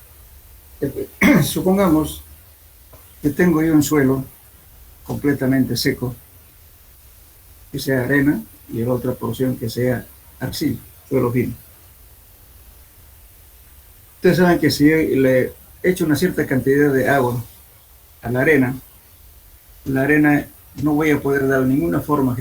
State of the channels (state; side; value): identical; both; correlation 1.00